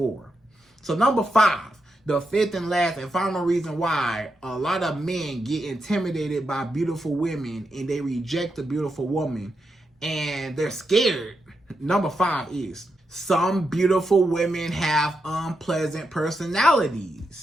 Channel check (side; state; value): both; normal; correlation 0.84